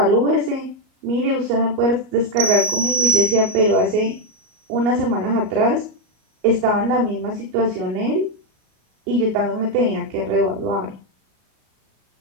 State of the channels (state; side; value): late; left; 38 ms